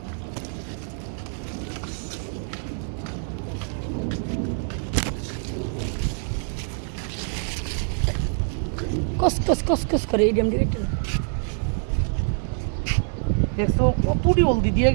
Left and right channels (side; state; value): left; silent; 62 dB below the other